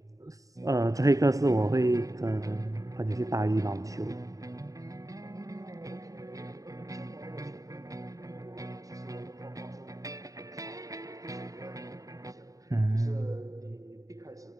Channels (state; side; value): late; left; 0.16 ms